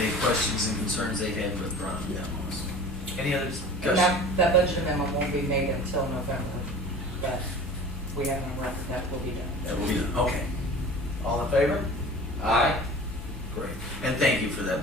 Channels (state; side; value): normal; both; correlation 0.41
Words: questions and concerns they had with Ron down on us. Any other And discussion? that budget amendment won't be made until November, but we have on record that will be done. That will be done, okay. All in favor? Aye. Great, and thank you for that,